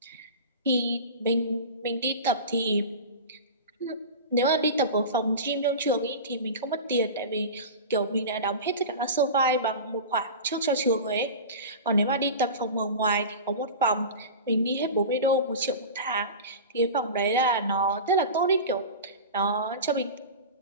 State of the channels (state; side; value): inverted; both; correlation -0.30